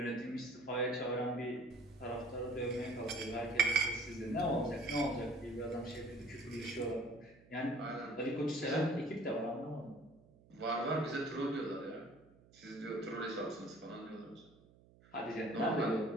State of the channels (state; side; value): noise; right; hum, 26 dB below the sound